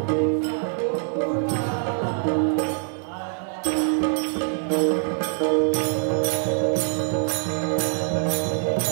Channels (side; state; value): left; silent; digital silence